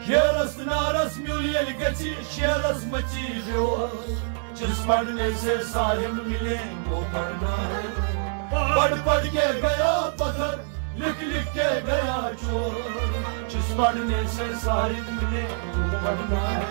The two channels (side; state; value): left; silent; 61 dB below the other